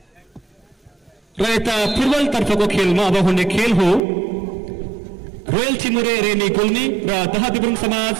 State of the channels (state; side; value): drops out; left; at 4.0 s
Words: र यता फुटबल तर्फको खेलमा अब हुने खेल हो रोयल चिमुरे रेनी गुल्मी र दहा दिब्रुङ